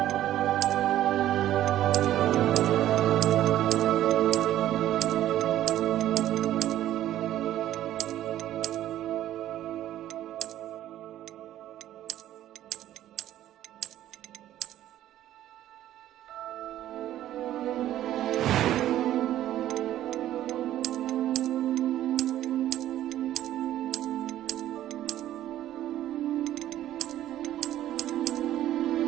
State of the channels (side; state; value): left; quieter; 12.8 dB